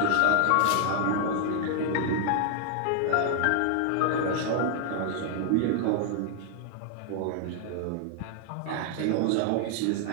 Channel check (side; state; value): both; different; correlation 0.00